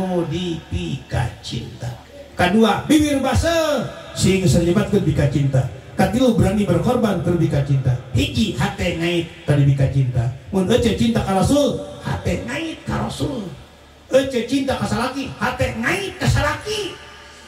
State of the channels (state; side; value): identical; both; correlation 1.00